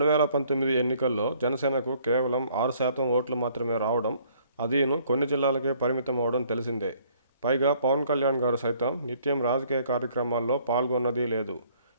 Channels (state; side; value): inverted; both; correlation -0.62